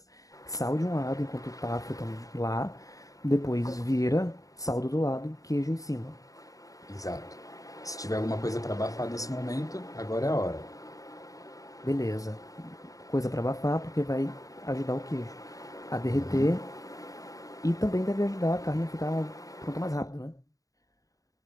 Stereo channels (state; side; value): late; right; 0.17 ms